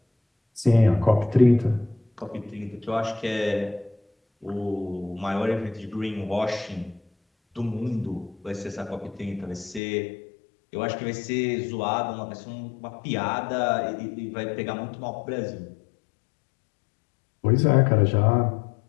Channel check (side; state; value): right; drops out; at 9.8 s